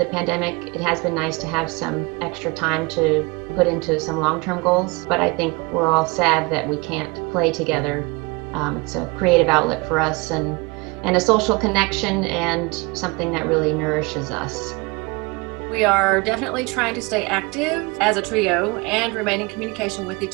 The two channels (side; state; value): left; quieter; 27.0 dB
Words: pandemic. It has been nice to have some extra time to put into some long-term goals, but I think we're all sad that we can't play together. It's a creative outlet for us and a social connection and something that really nourishes us. We are definitely trying to stay active as a trio and remain in communication with